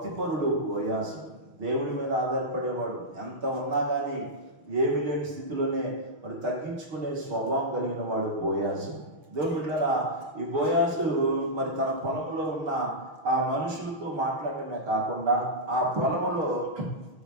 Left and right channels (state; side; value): late; left; 6.1 ms